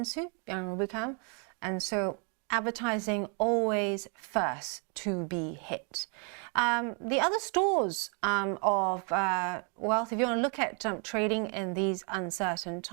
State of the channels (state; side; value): quieter; left; 38.1 dB